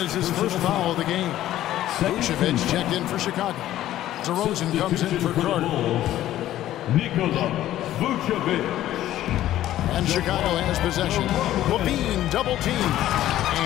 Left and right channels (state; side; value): quieter; right; 13.4 dB